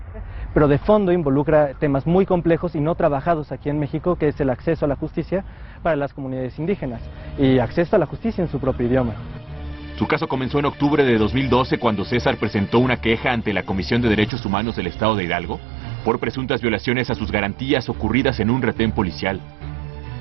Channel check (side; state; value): left; drops out; at 14.3 s